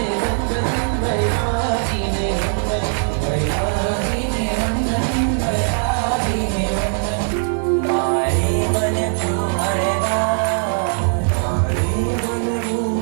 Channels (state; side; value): silent; left; 66 dB below the other